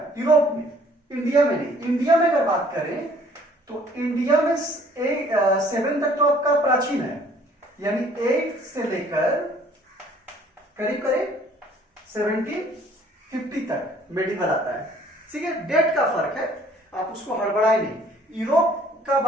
यूरोप में, इंडिया में नहीं। इंडिया में अगर बात करें तो इंडिया में 7 तक तो आपका प्राचीन है, यानी 8 से लेकर करीब करीब 1750 तक मेडिवल आता है, ठीक है? डेट का फर्क है, आप उसको हड़बड़ाए नहीं। यूरोप का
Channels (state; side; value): normal; both; correlation 0.58